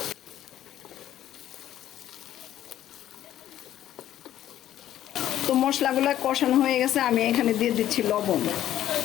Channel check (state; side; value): quieter; right; 12.2 dB